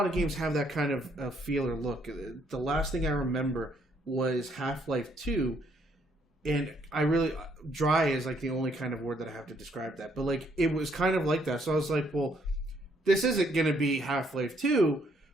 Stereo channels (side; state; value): both; normal; correlation 0.69